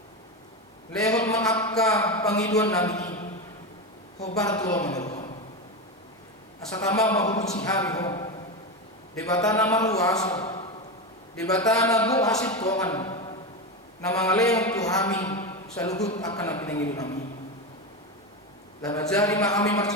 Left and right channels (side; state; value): both; normal; correlation 0.16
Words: Leon maakka pangiduan namin. Hobar tulo manuruhan. Asa tama mahulog si hari ho. Debata na maruwaso. Debata na buhasit tuangan. Na mga leon tuhami sa luhut akan na pinangido namin. Labajari mahami